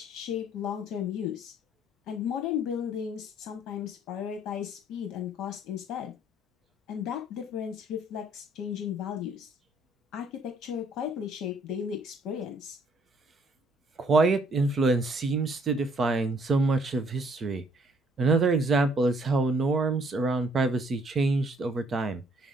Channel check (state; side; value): normal; both; correlation 0.64